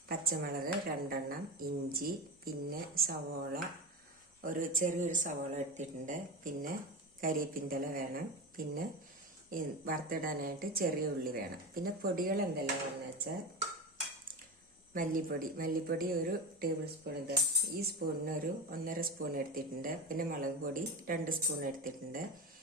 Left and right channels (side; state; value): both; normal; correlation 0.22